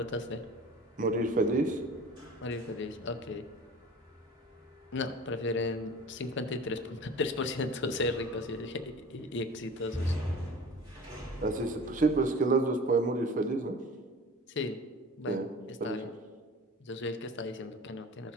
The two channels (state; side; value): normal; both; correlation 0.41